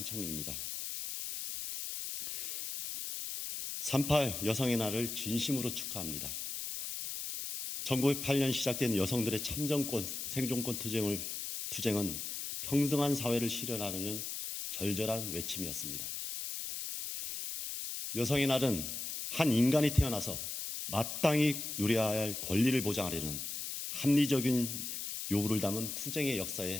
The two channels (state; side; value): noise; left; hiss, 5 dB below the sound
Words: 3.8 여성의 날을 진심으로 축하합니다. 1908년 시작된 여성들의 참정권, 생존권 투쟁은 평등한 사회를 실현하려는 절절한 외침이었습니다. 여성의 날은 한 인간이 태어나서 마땅히 누려야 할 권리를 보장하려는 합리적인 요구를 담은 투쟁의